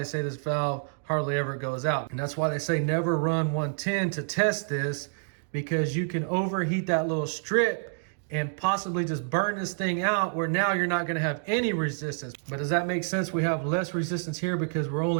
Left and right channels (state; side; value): silent; left; digital silence